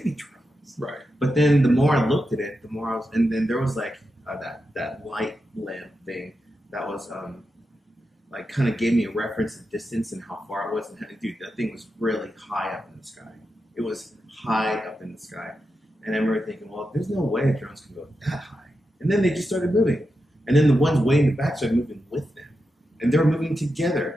be drones. Right. But then the more I looked at it, the more and then there was like that light lamp thing that was like kind of gave me a reference of distance and how far it was. And dude, that thing was really high up in the sky. It was high up in the sky. And I remember thinking, well, there's no way drones can go that high. And then they just started moving. And then the ones way in the back started moving with them. And they were moving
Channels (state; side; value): normal; both; correlation 0.88